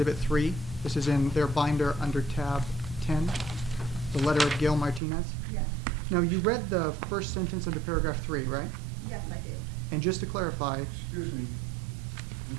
3. This is in their binder under tab 10, the letter of Gail Martinez. Yes, Now, you read the first sentence under paragraph 3, right? yes, I did. And just to clarify, Excuse me, would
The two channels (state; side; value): drops out; left; at 5.0 s